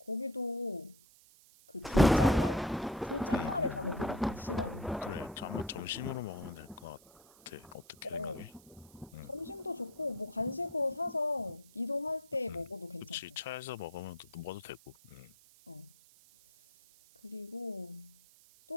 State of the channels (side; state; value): right; noise; hiss, 25 dB below the sound